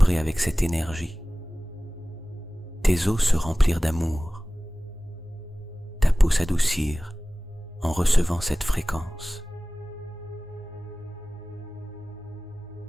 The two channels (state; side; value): normal; both; correlation 0.98